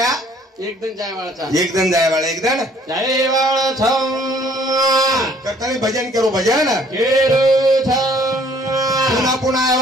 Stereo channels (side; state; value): both; normal; correlation 0.59